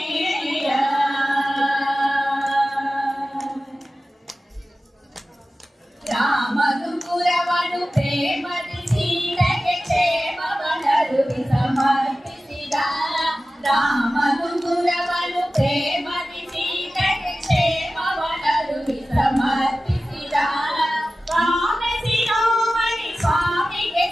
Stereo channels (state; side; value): normal; both; correlation 0.95